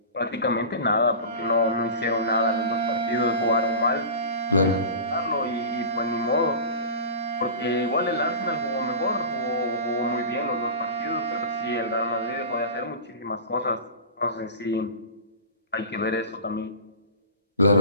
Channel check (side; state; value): both; inverted; correlation -0.31